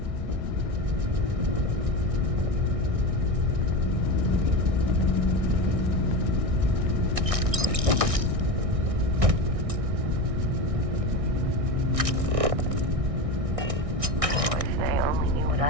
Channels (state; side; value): late; left; 1.6 ms